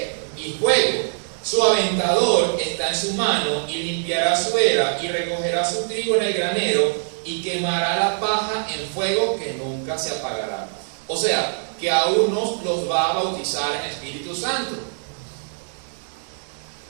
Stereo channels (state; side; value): silent; left; 63 dB below the other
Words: Y fuego. Su aventador está en su mano, y limpiará su era, y recogerá su trigo en el granero, y quemará la paja en fuego que nunca se apagará. O sea, que a unos los va a bautizar en Espíritu Santo,